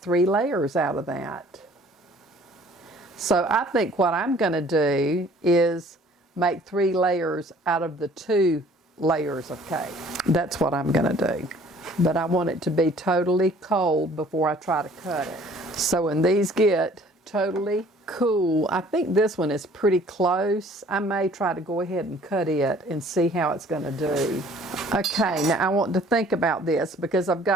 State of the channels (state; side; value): normal; both; correlation 0.54